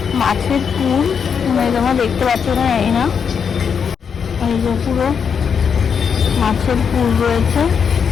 মাছের পুর, তোমরা দেখতে পাচ্ছ না এই না, এই যে পুরো মাছের পুর রয়েছে।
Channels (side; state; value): right; quieter; 6.8 dB